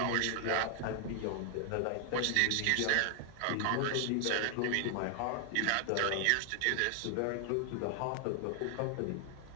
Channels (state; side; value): different; both; correlation 0.00